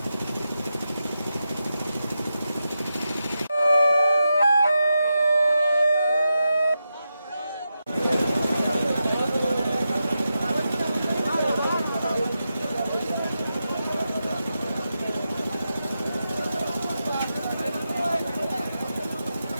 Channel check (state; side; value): inverted; both; correlation -0.89